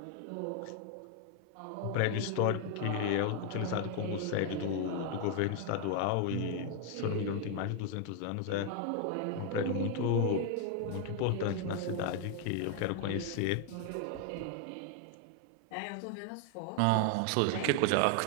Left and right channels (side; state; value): both; different; correlation 0.00